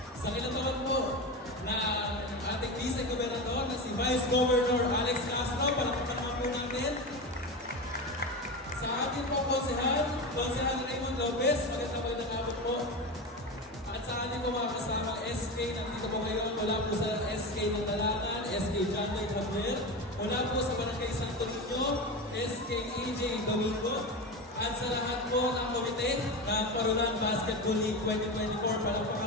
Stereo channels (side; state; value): both; normal; correlation 0.22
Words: Sa kinataon po na ating Vice-Gobernador na si Vice Governor Alex Castro, palakpakan naman po natin. Sa ating po Konsehal Raymond Lopez, magandang hapon po. At sa ating po mga kasama SK, nandito po ngayon mula po sa SK ng Talangan, SK John Lloyd Javier, mula po sa Barangay Santo Niño, SK AJ Domingo, at sa lahat po ng komite ng Parolan Basketball League 2024,